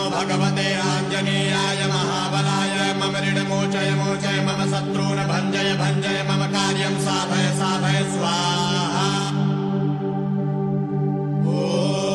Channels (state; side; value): identical; both; correlation 1.00